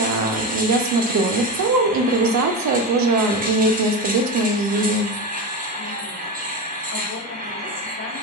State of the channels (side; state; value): both; normal; correlation 0.19